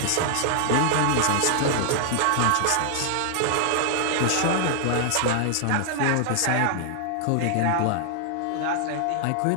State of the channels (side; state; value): both; different; correlation 0.00